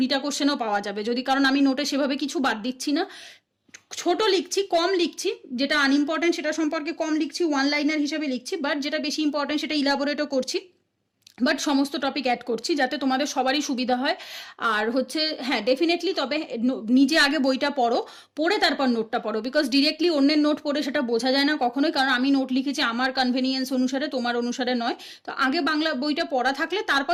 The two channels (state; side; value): identical; both; correlation 1.00